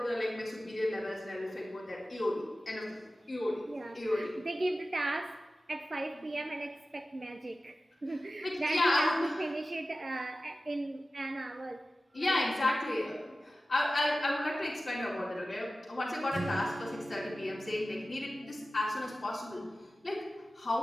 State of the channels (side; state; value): both; normal; correlation 0.95